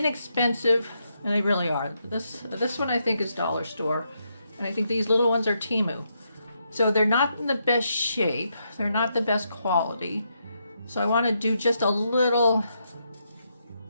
and they really are. This one I think is dollar store, and I think these little ones are Temu. So they're not in the best shape, they're not the best quality. So I want to do just a little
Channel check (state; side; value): inverted; both; correlation -0.80